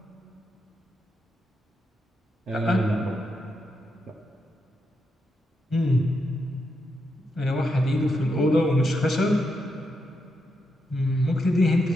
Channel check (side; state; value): both; normal; correlation 0.83